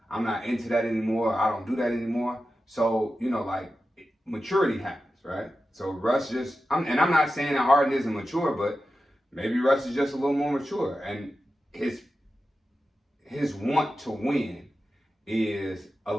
I'm not into that anymore. I don't do that anymore. So like maturity happens, right? So Russ I'm not saying that Harden isn't mature, but maybe Russ is just a little more mature, and his want to win is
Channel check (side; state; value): both; normal; correlation 0.92